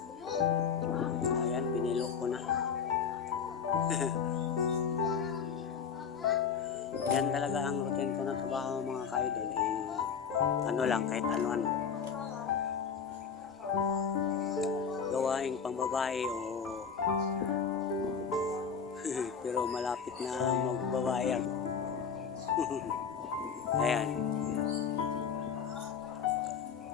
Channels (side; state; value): right; quieter; 6.6 dB